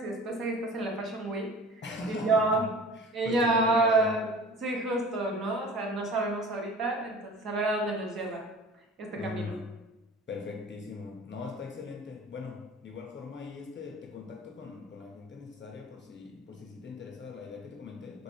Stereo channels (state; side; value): normal; both; correlation 0.42